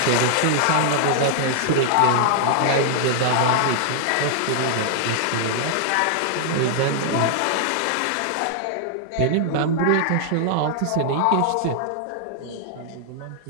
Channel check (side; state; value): both; different; correlation -0.01